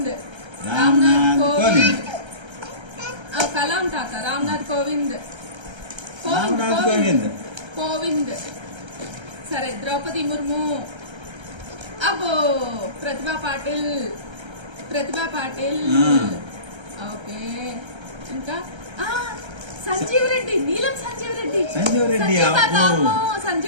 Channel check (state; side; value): late; left; 1.3 ms